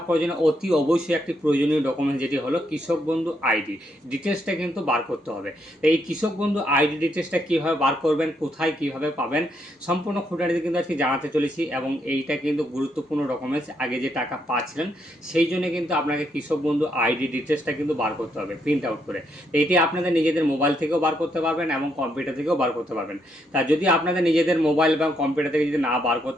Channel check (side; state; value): both; normal; correlation 0.76